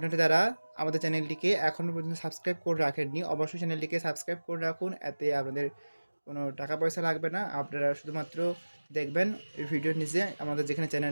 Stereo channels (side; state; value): both; inverted; correlation -1.00